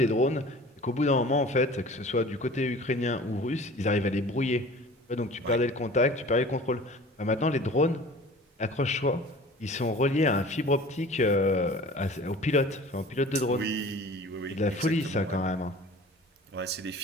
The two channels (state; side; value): normal; both; correlation 0.43